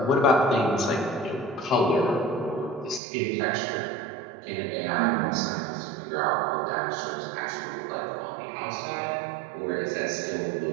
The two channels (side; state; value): left; drops out; at 3.0 s